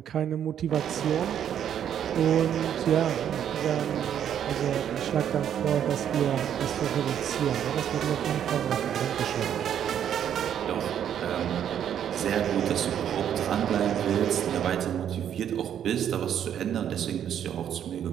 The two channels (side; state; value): left; quieter; 9.5 dB